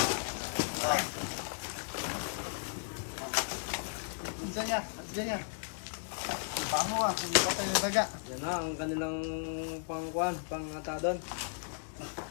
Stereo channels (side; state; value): right; silent; 54 dB below the other